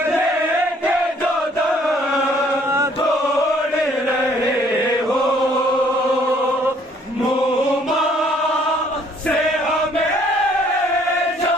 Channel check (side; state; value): both; normal; correlation 0.62